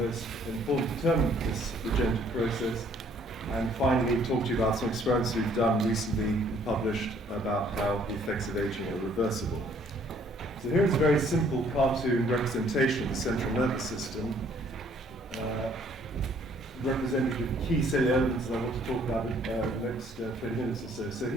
important determinant of this regenerative process. And finally, talk to you about some experiments we've done recently and published about how the effects of aging are reversible. So here's a very simple cartoon representation of the central nervous system, representing the key cellular elements that I want to talk about in the next 20 minutes or so. So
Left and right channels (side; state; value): both; normal; correlation 0.61